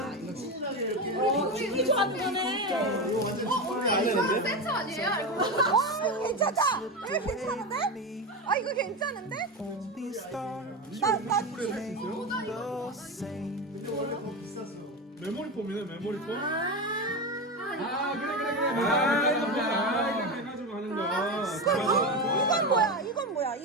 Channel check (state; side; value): normal; both; correlation 0.18